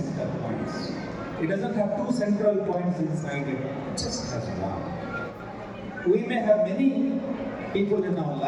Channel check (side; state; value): both; identical; correlation 1.00